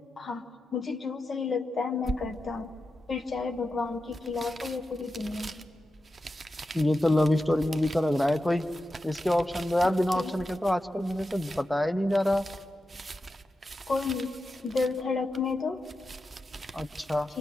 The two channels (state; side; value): normal; both; correlation 0.90